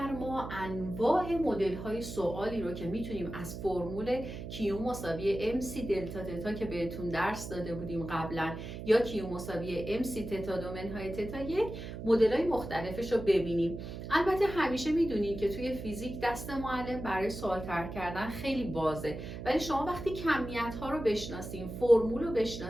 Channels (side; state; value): right; noise; hum, 8 dB below the sound